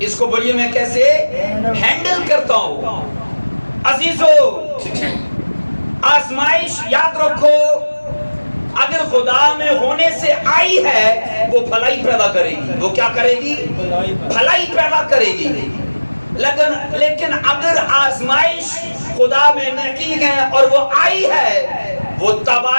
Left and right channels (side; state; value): both; inverted; correlation -1.00